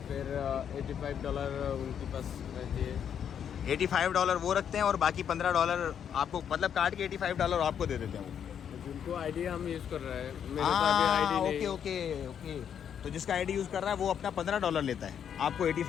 फिर $85 उनके पास रहती है। $85 वो रखते हैं और बाकी $15 आपको, मतलब काट के $85 आपको दे देते हैं वो। जिनको आईडी हम यूज़ कर रहे हैं, मेरे तो हाँ, अभी आईडी नहीं। Okay okay okay. तो जिसका आईडी यूज़ कर रहा है वो अपना $15 लेता है, आपको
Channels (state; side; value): quieter; right; 8.5 dB